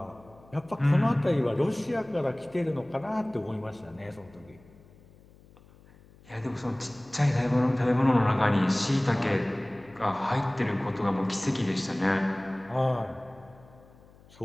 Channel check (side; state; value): left; noise; hum, 25 dB below the sound